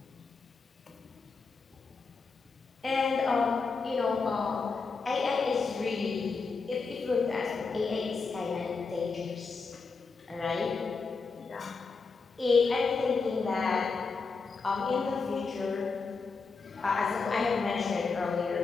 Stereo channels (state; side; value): quieter; right; 4.6 dB